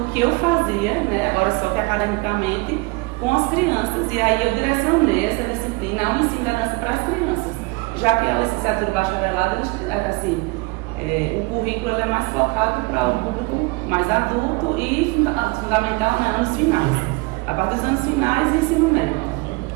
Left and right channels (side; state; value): left; quieter; 25.8 dB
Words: que eu fazia, né, agora só que academicamente, com as crianças. E aí eu direcionei essa disciplina ao ensino da dança para as crianças. Já que a licenciatura e bacharelado, assim, o currículo é mais focado para o público mais adulto e fundamental, né, anos finais. A partir dos anos finais, ensino médio.